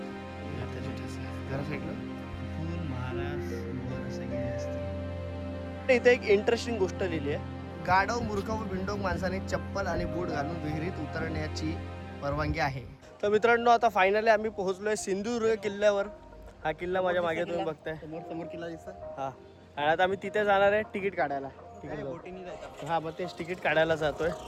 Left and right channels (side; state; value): both; identical; correlation 1.00